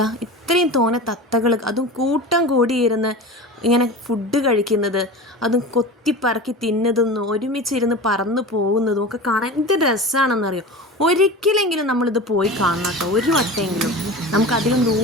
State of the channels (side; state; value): both; normal; correlation 0.32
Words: ഇത്രയും തോനെ തത്തകൾ, അതും കൂട്ടം കൂടിയിരുന്ന് ഇങ്ങനെ ഫുഡ് കഴിക്കുന്നത്, അതും കൊത്തിപ്പറക്കി തിന്നതൊന്നും ഒരുമിച്ചിരുന്ന് പറന്ന് പോകുന്നതും ഒക്കെ കാണാൻ എന്ത് രസമാണെന്നറിയോ. ഒരിക്കലെങ്കിലും നമ്മളിത് പോയി കാണണം കേട്ടോ, ഒരു വട്ടമെങ്കിലും. നമുക്കധികം